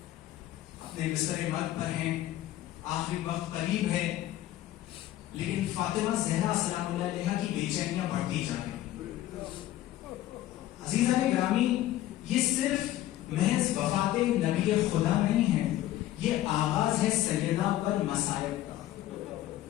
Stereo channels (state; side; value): quieter; right; 14.1 dB